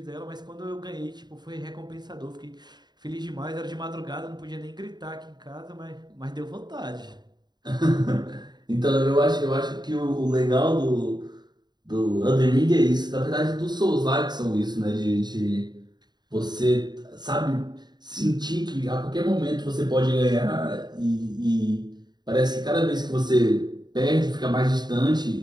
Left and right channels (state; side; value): late; left; 0.21 ms